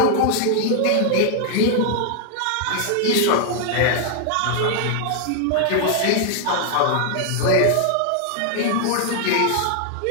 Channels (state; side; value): different; both; correlation 0.00